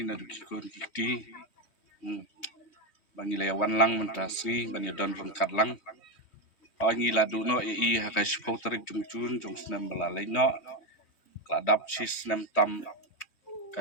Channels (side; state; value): right; late; 3.2 ms